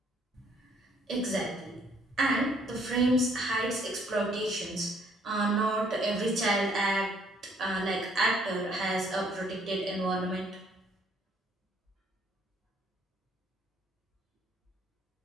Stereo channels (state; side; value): normal; both; correlation 0.64